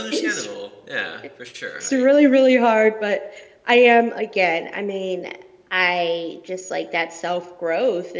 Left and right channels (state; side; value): identical; both; correlation 1.00